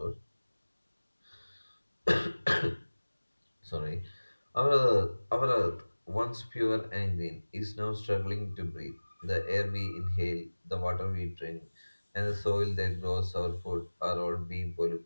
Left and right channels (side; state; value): both; inverted; correlation -1.00